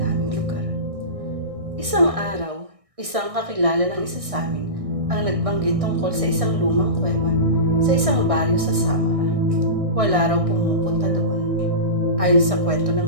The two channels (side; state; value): left; late; 1.6 ms